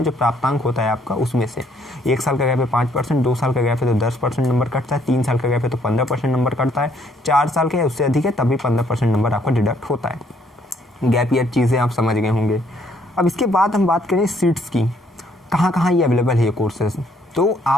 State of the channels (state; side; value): normal; both; correlation 0.67